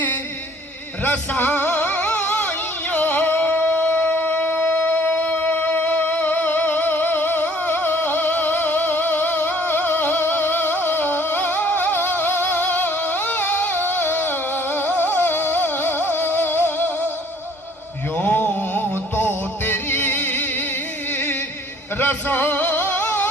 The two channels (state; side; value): normal; both; correlation 0.57